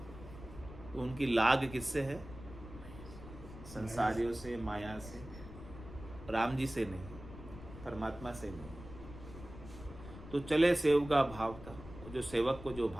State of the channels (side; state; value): left; noise; rumble, 14 dB below the sound